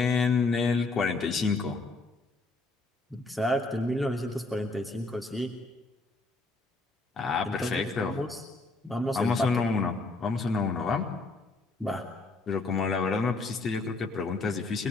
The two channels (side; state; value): right; quieter; 3.4 dB